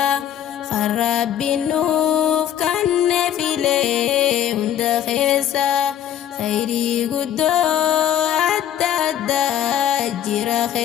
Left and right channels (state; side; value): quieter; right; 10.4 dB